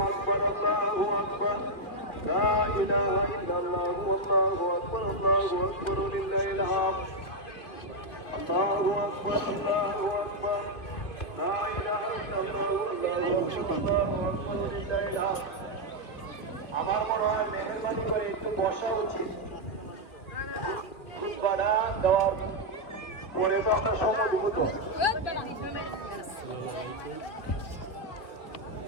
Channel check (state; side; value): late; right; 2.5 ms